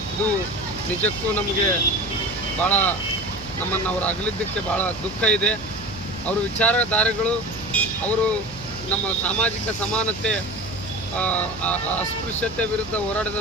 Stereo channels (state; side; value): noise; right; hum, 17 dB below the sound